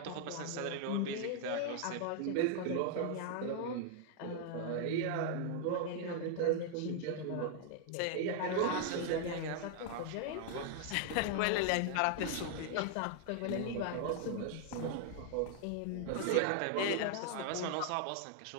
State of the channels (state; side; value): different; both; correlation 0.00